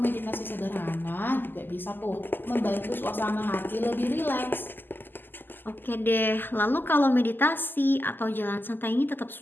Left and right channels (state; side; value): late; right; 0.092 ms